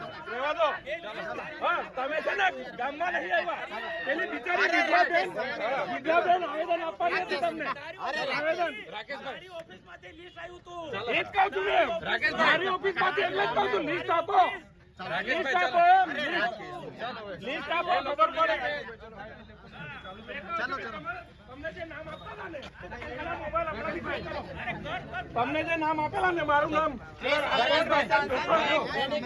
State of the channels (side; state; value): both; identical; correlation 1.00